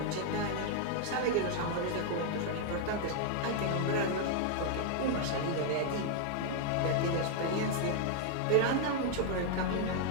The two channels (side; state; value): both; different; correlation 0.00